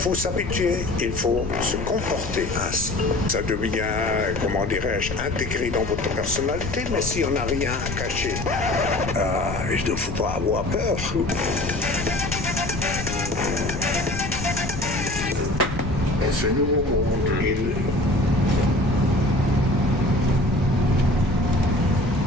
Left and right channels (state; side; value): noise; left; rumble, 8 dB below the sound